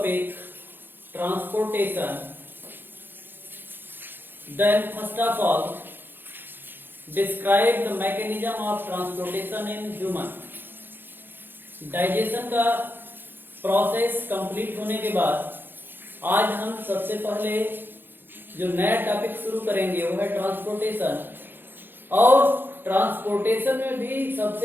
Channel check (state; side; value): late; left; 0.098 ms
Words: transportation. Then first of all, describe the mechanism of transportation in human. Digestion का process complete होने के बाद आज हम सबसे पहले जो नया टॉपिक शुरू करेंगे वो है ट्रांसपोर्टेशन। और ट्रांसपोर्टेशन में भी